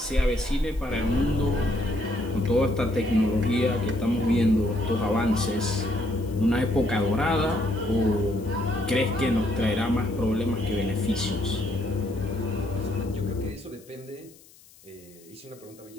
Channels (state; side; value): noise; left; hiss, 25 dB below the sound